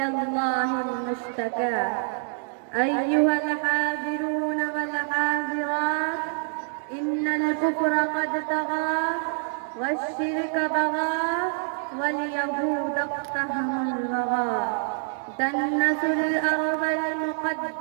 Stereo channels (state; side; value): silent; left; digital silence